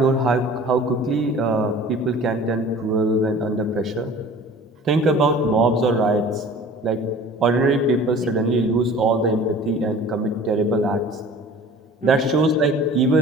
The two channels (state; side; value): normal; both; correlation 0.45